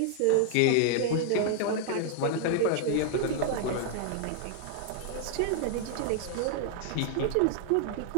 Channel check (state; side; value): different; both; correlation 0.00